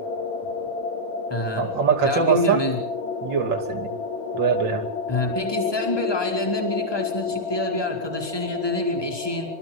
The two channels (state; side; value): late; right; 1.2 ms